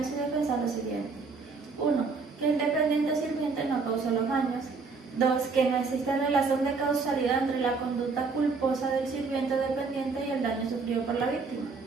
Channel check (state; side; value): quieter; left; 4.5 dB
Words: su defensa lo siguiente: 1. Que el dependiente o sirviente no causó los daños. 2. Que no existe relación de causalidad entre la conducta culposa del sirviente o dependiente y el daño sufrido por la víctima.